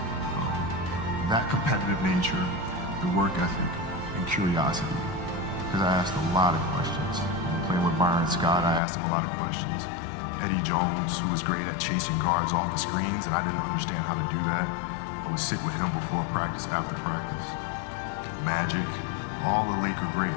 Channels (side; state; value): right; drops out; at 8.8 s